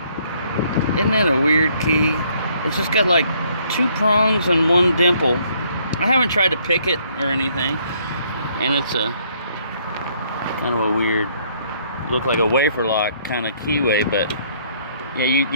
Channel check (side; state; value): both; inverted; correlation -0.66